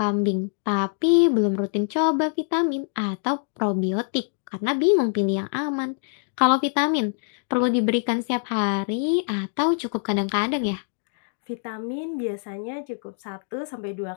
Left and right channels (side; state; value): right; silent; digital silence